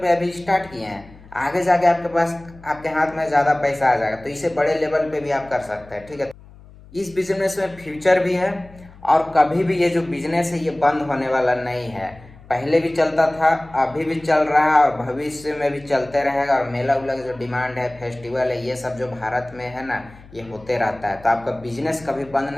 अभी स्टार्ट किए हैं, आगे जाके आपके पास आपके हाथ में ज़्यादा पैसा आ जाएगा, तो इसे बड़े लेवल पे भी आप कर सकते हैं। ठीक है, इस बिजनेस में फ्यूचर भी है और कभी भी ये जो बिजनेस है ये बंद होने वाला नहीं है। पहले भी चलता था, अभी भी चल रहा है और भविष्य में भी चलते रहेगा। और मेला उला जो डिमांड है, फेस्टिवल है, ये सब जो भारत में है ना, ये होते रहता है। तो आपका बिजनेस कभी बंद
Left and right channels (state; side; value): noise; left; hum, 22 dB below the sound